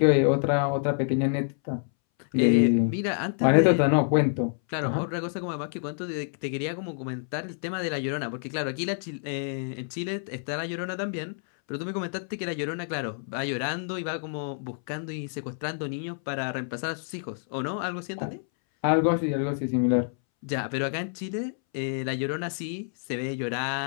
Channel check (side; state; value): right; silent; 60 dB below the other